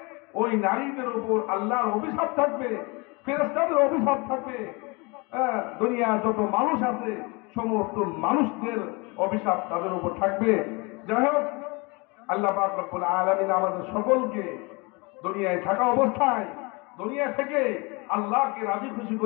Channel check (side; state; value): right; quieter; 28.1 dB